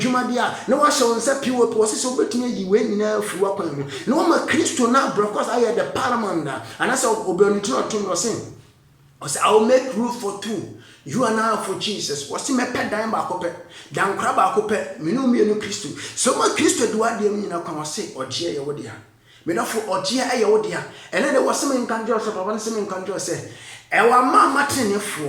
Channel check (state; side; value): identical; both; correlation 1.00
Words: de a na wa hye wonsa piwo po se obetimi yi we nyina afi wakwan mu na wo ma Kristo na brokos aye the paramount and as obioniti otum no say I will make room for 2. You are now for Jesus. What's in my pet dime back up? Down crab back up, Minu me no Christo. So my Christo do I dear me now come say, or dear your dear. Me not for or dear your dear. And then there was some in conjure, so one some in conjure say, Ewa mama tenefo